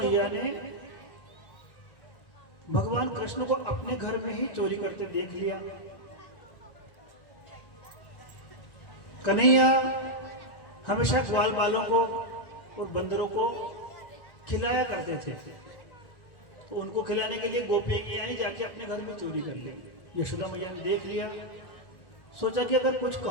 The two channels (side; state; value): right; late; 1.1 ms